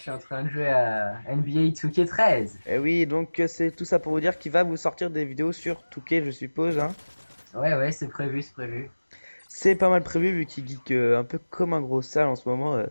suis en train de jouer à NBA 2K13. Eh oui, donc c'est tout ça pour vous dire qu'il va vous sortir des vidéos sur Touquet, je suppose, hein. Ouais ouais, c'est prévu, c'est prévu. C'est pas mal prévu vu qu'il geek un peu comme un gros sale en ce moment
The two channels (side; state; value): both; inverted; correlation -1.00